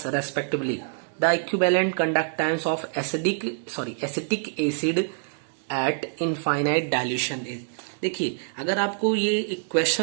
respectively. The equivalent conductance of acetic acid at infinite dilution is. देखिए अगर आपको ये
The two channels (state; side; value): silent; left; 61 dB below the other